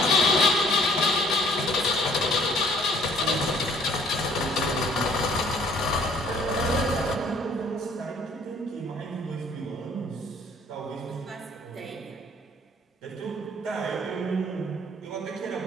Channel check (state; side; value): normal; both; correlation 0.58